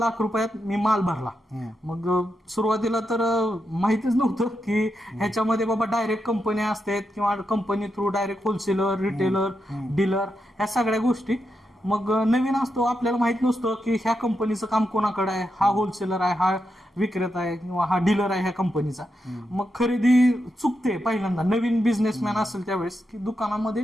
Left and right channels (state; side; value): normal; both; correlation 0.85